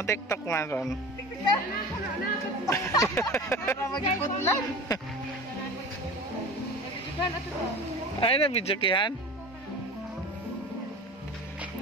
TikTok man ron. Magiputlan. Ay na video kihan.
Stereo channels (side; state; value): both; normal; correlation 0.35